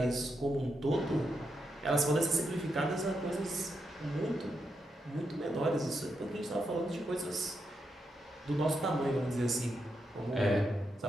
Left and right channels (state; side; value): normal; both; correlation 0.84